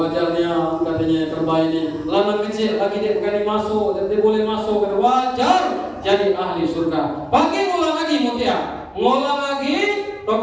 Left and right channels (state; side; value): identical; both; correlation 1.00